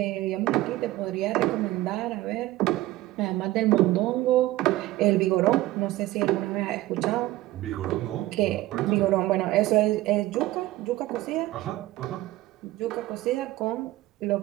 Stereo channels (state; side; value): quieter; left; 16.8 dB